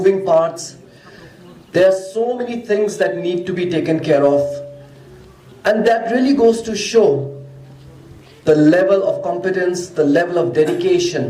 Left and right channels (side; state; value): both; identical; correlation 1.00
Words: parts. There are so many things that need to be taken care of. And that really goes to show the level of competence, the level of